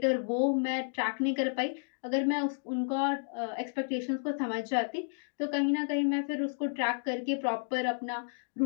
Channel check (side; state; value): right; silent; digital silence